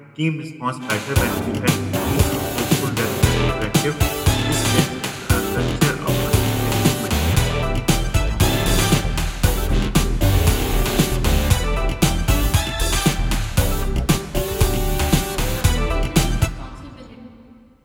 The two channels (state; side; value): identical; both; correlation 1.00